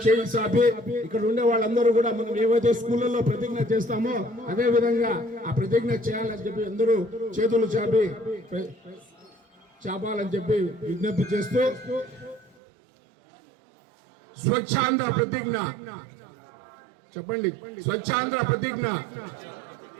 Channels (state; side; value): drops out; left; at 12.6 s